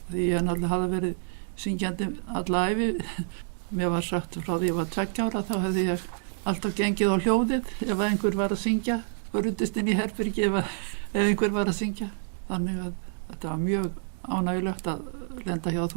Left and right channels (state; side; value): silent; left; digital silence